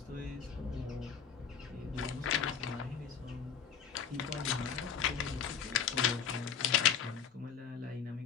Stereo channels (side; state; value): right; quieter; 7.5 dB